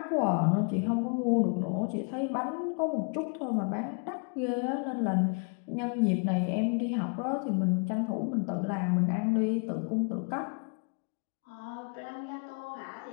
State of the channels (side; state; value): right; quieter; 37.9 dB